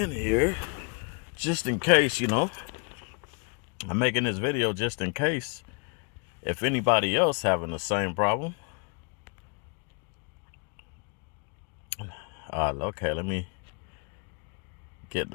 here just in case, you know. I'm making this video just in case if anybody else having the same problem. Okay, let me get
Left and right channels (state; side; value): quieter; right; 36.7 dB